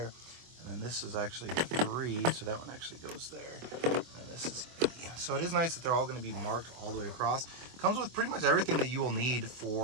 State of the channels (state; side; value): late; left; 24 ms